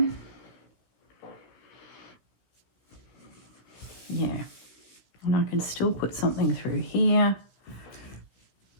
Yeah, and I can still put something through here.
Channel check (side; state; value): right; late; 16 ms